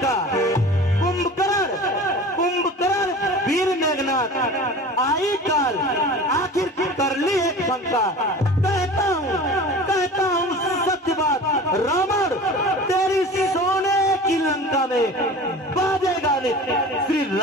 कुंभकर्ण वीर मेघनाथ आई काल आखिर कर ली एक शंका। कहता हूँ सत्य बात रावण, तेरी सोने की लंका में बाजेगा नित्य श्री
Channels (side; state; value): both; normal; correlation 0.38